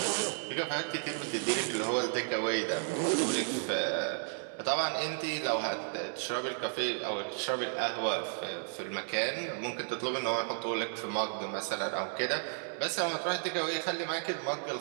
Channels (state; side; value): silent; left; 56 dB below the other